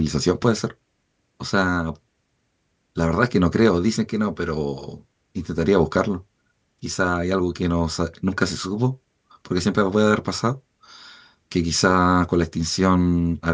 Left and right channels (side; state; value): both; identical; correlation 1.00